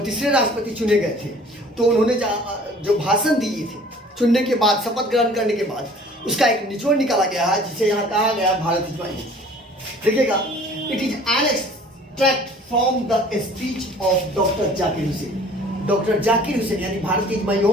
तीसरे राष्ट्रपति चुने गए थे तो उन्होंने जो भाषण दिए थे चुनने के बाद, शपथ ग्रहण करने के बाद, उसका एक निचोड़ निकाला गया है जिसे यहाँ कहा गया भारत इज माई होम। देखिएगा, it is an extract from the speech of doctor Zakir Hussain. Doctor Zakir Hussain यानी भारत इज माई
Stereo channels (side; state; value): both; normal; correlation 0.50